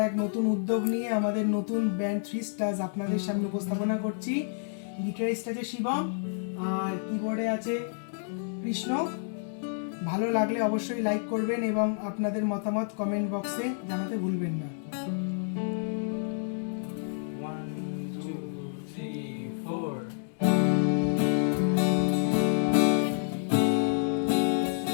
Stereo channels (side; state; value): right; silent; digital silence